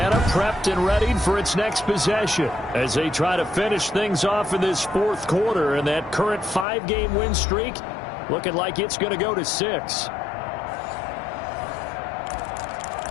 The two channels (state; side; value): drops out; right; at 6.7 s